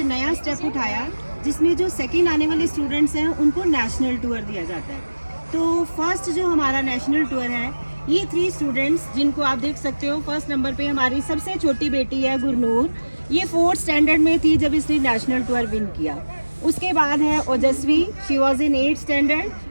नया स्टेप उठाया, जिसमें जो सेकंड आने वाले स्टूडेंट्स हैं उनको नेशनल टूर दिया जाता है। तो फर्स्ट जो हमारा नेशनल टूर है, ये 3 स्टूडेंट्स जिनको आप देख सकते हो, फर्स्ट नंबर पे हमारी सबसे छोटी बेटी है गुरनूर। ये 4th स्टैंडर्ड में थी जब इसने नेशनल टूर विन किया। उसके बाद है ओजस्वी, she was in 8th standard,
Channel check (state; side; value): inverted; both; correlation -1.00